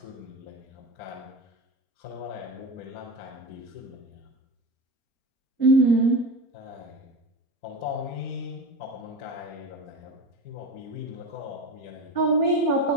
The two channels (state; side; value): late; right; 4.4 ms